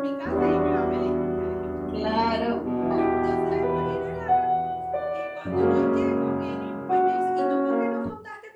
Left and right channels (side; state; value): both; identical; correlation 1.00